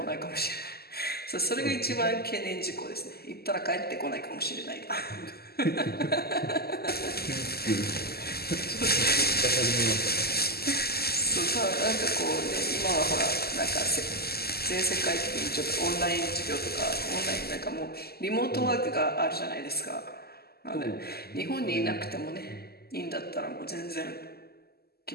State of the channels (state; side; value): late; right; 0.46 ms